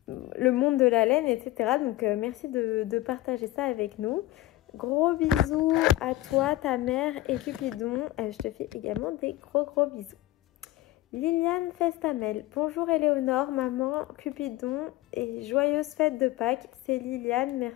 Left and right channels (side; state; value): right; quieter; 16.2 dB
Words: monde de la laine, etc. Donc, merci de partager ça avec nous. Gros bisous à toi, ta mère et Cupidon. Je te fais également des gros bisous. Liliane Festamel. Bonjour Éléonore, maman, Cupidon et joyeuse fête de Pâques. C'est Liliane,